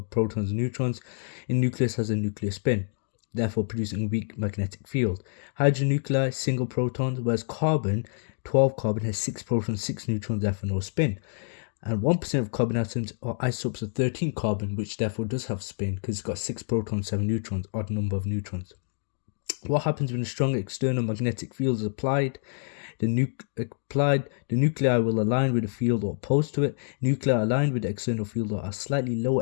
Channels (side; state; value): right; silent; 60 dB below the other